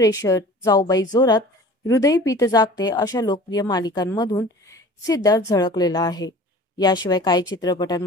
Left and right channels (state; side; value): normal; both; correlation 0.43